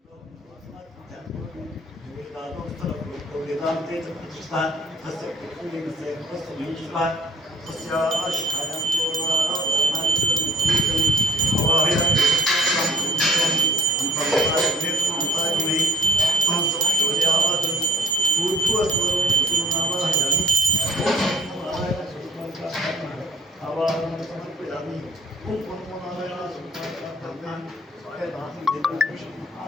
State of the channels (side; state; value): both; normal; correlation 0.58